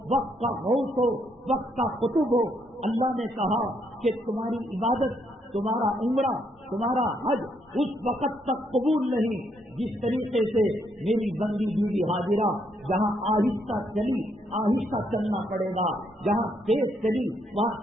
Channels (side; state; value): both; normal; correlation 0.74